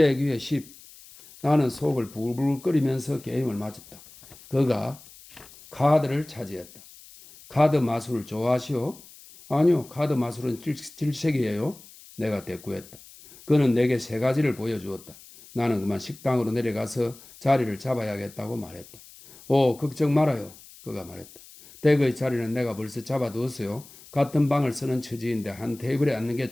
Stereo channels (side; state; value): left; noise; hiss, 21 dB below the sound